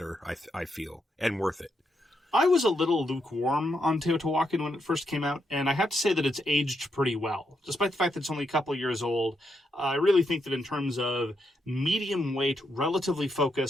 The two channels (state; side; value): normal; both; correlation 0.81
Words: I feel, and worth it. I was a little lukewarm on Teotihuacan when it first came out, and I have to say that it's aged pretty well. Despite the fact that it's only a couple of years old, I really think that in terms of medium weight, relatively